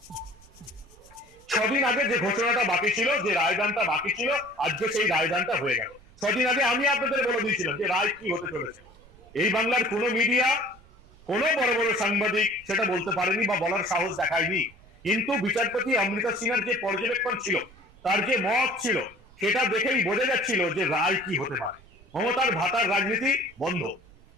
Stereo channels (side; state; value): right; noise; rumble, 25 dB below the sound